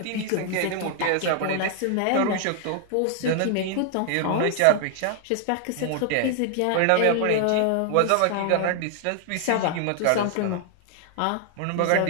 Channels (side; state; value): both; different; correlation 0.00